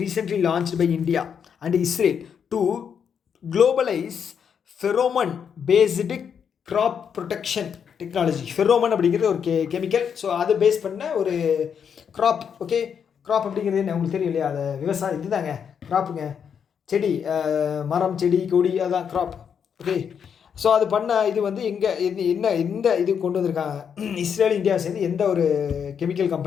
recently launched by India and Israel to globalize pheromone based crop protection technology. Pheromone அப்படிங்கிறது ஒரு கெமிக்கல். ஸோ அதை பேஸ் பண்ண ஒரு க்ராப். ஓகே, க்ராப் அப்படிங்கிறது என்ன உங்களுக்கு தெரியும் இல்லையா? அது விவசாயம் இதுதாங்க க்ராப்புங்க. செடி, மரம், செடி, கொடி, அதுதான் க்ராப். ஓகே, ஸோ அது பண்ண இது வந்து எங்கே என்ன எந்த இது கொண்டு வந்திருக்காங்க? இஸ்ரேல் இந்தியாவை சேர்ந்து எந்த ஒரு கெமிக்கல்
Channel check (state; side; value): quieter; right; 7.4 dB